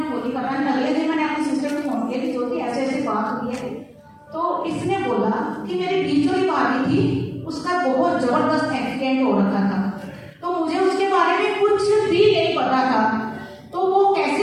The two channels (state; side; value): identical; both; correlation 1.00